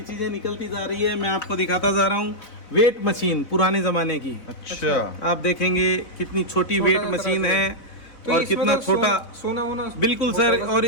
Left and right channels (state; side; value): late; right; 4.0 ms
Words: निकलती जा रही है, मैं आपको दिखाता जा रहा हूँ। वेट मशीन पुराने जमाने की, अच्छा आप देखेंगे कितनी छोटी छोटा वेट सा मशीन तरह से। है तो और इसमें कितना तो छोटा। सोना वोना बिल्कुल सर, और